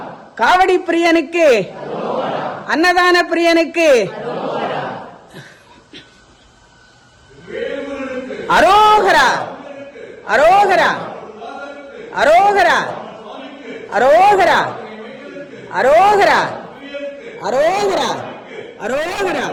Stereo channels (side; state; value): both; identical; correlation 1.00